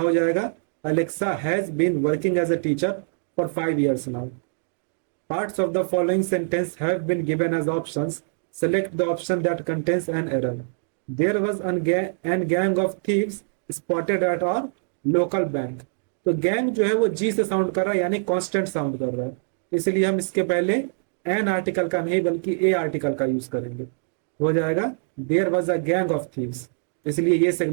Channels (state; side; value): silent; left; digital silence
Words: जाएगा Alexa has been working as a teacher for 5 years now. Parts of the following sentence have been given as options. Select the option that contains an error. There was an gang of thieves spotted at our local bank. तो gang जो है वो G से sound कर रहा है, यानी constant sound कर रहा है, इसलिए हम इसके पहले एन आर्टिकल का नहीं बल्कि ए आर्टिकल का यूज करेंगे। हो जाएगा there was a gang of thieves, इसलिए ये